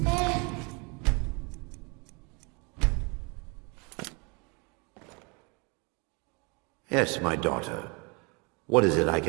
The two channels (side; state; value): left; quieter; 30.6 dB